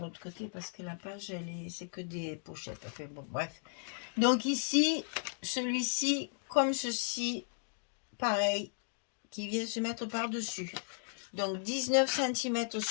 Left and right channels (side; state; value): right; silent; digital silence